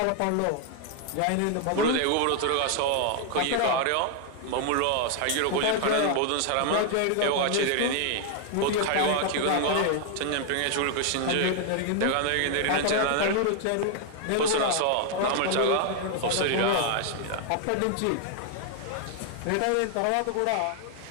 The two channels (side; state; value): both; different; correlation 0.00